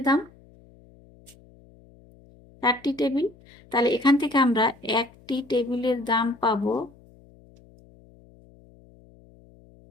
দাম, 4টি টেবিল। তাহলে এখান থেকে আমরা একটি টেবিলের দাম পাবো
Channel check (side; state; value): left; noise; hum, 26 dB below the sound